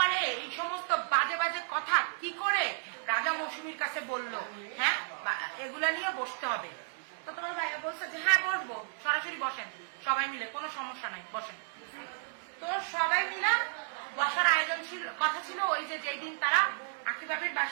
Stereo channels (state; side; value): silent; left; digital silence